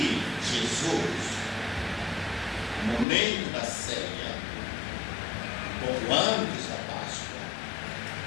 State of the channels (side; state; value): right; drops out; at 3.1 s